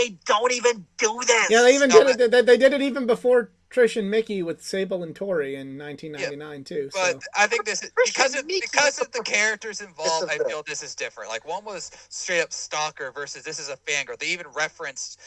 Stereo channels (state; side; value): identical; both; correlation 1.00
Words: Don't even do this. Yeah, they even did it. They did it even before Trish and Mickey with Sable and Tori in 1999 too. But So. I think this is because of the characters involved. I feel this is different. Like, one was straight up stalker versus this is a fangirl. They even referenced